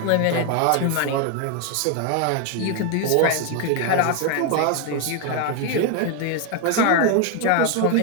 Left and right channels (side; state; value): both; different; correlation 0.01